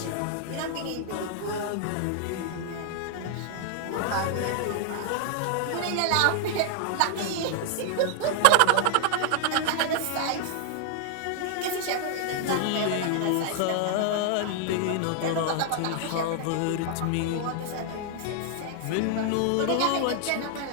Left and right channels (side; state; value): both; different; correlation 0.00